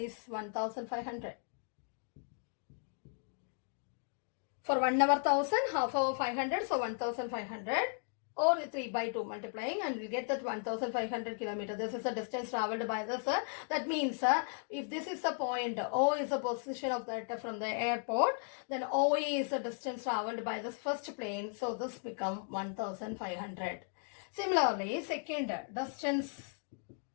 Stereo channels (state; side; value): silent; right; 54 dB below the other